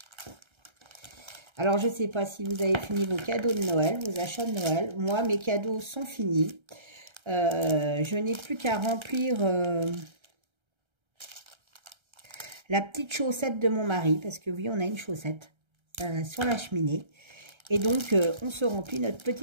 Alors, je ne sais pas si vous avez fini vos cadeaux de Noël, vos achats de Noël. Moi, mes cadeaux sont finis. Je n'ai plus qu'à remplir la petite chaussette de mon mari. Parce que oui, on a une chaussette sur la cheminée. Et donc, on se remplit notre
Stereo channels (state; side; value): late; left; 1.3 ms